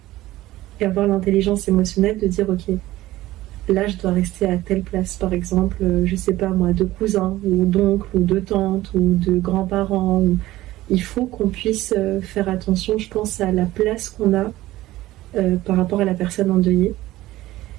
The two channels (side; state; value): left; quieter; 16.5 dB